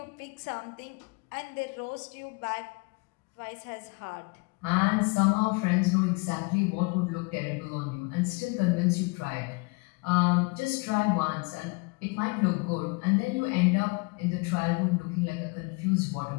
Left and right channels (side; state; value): right; quieter; 29.2 dB